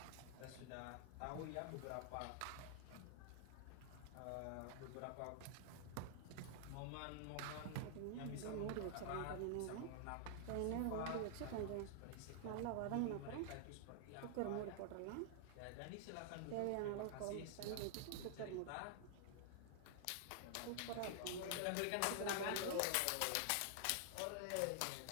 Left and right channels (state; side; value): different; both; correlation -0.01